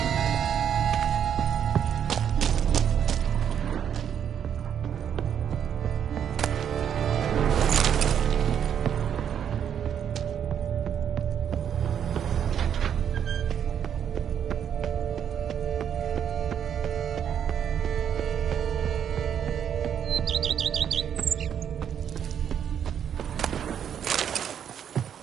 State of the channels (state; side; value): quieter; left; 8.7 dB